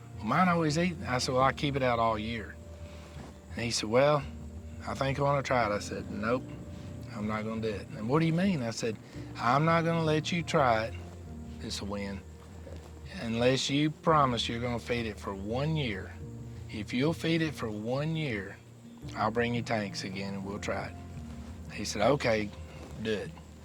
Well, mine always eat. I said, well, I keep it out all year. And he said, well, I think I want to try it. I said, nope, I'm not going to do it. And what do you mean? I said, I'm not going to let you try it, this will win, unless you promise you're going to feed it for 1 year. If you'll feed it for 1 year, I'll bring you tanks again and we'll try it. He said, okay, do it.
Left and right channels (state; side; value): identical; both; correlation 1.00